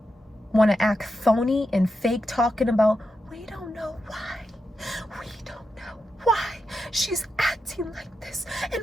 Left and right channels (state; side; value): normal; both; correlation 0.87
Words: want to act phony and fake, talking about, we don't know why. We don't know why she's acting like this and